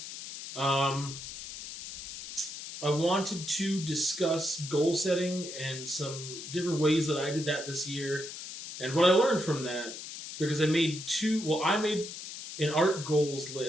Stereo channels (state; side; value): noise; left; hiss, 10 dB below the sound